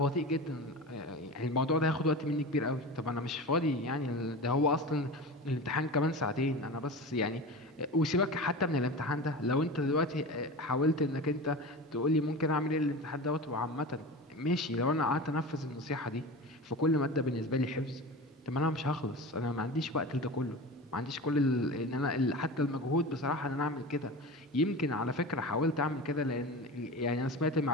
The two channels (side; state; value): both; normal; correlation 0.30